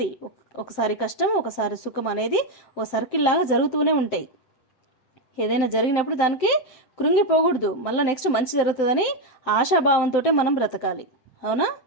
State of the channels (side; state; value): right; late; 7.8 ms